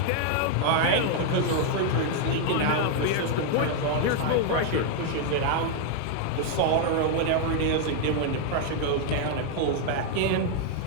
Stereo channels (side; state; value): both; different; correlation 0.00